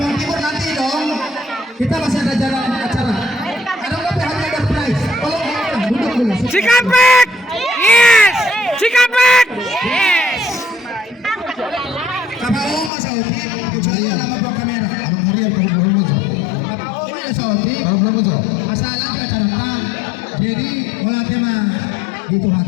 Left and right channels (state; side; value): drops out; right; at 12.9 s